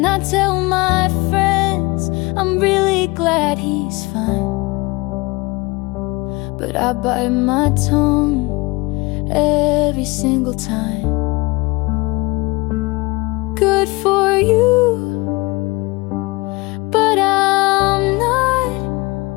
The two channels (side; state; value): right; quieter; 24.3 dB